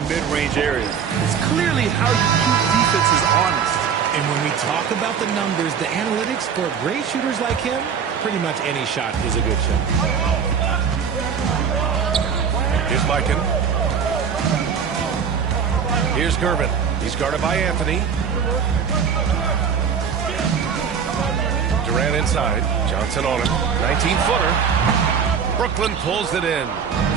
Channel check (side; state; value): left; quieter; 6.9 dB